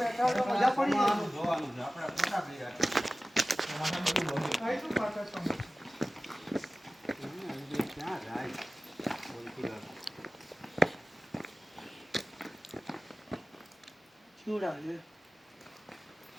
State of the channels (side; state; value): both; normal; correlation 0.96